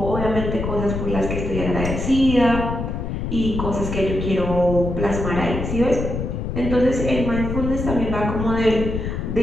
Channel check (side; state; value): left; noise; rumble, 3 dB below the sound